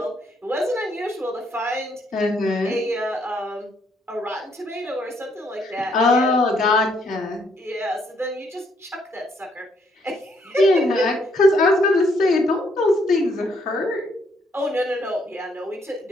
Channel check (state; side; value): normal; both; correlation 0.70